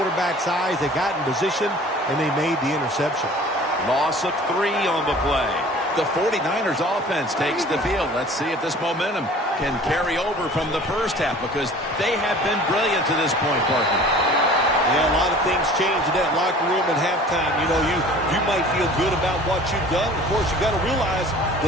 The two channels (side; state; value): both; normal; correlation 0.46